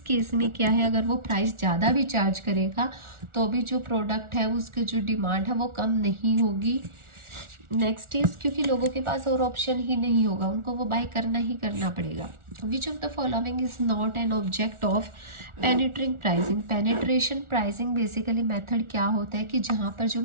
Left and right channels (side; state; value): left; late; 1.4 ms